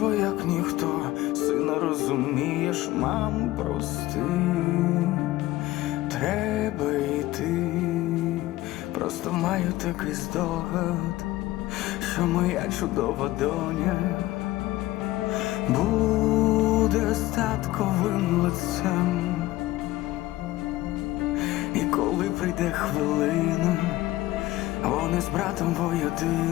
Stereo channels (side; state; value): right; quieter; 17.1 dB